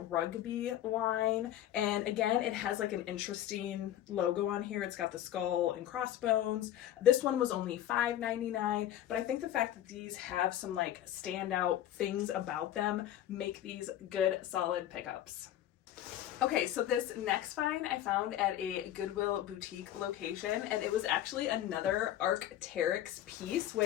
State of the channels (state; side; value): quieter; right; 12.2 dB